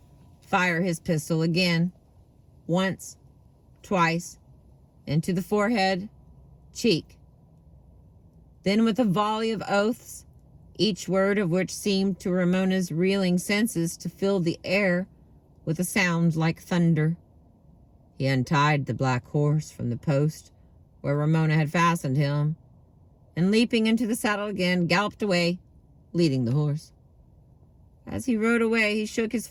fire his pistol again, once, twice, into the forehead, cheek. Then with a volley of oaths, each word of which seemed to Ramona's reeling senses to fill the air with a sound like thunder, he untied the black horse from the post where Ramona had fastened him, and leaping into the saddle again, galloped away, leading the horse. As he rode away, he shook his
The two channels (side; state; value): both; identical; correlation 1.00